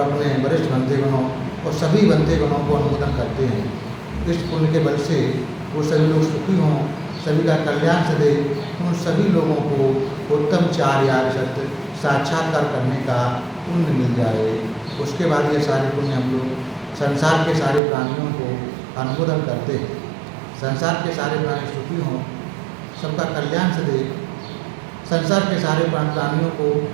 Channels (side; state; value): left; drops out; at 17.8 s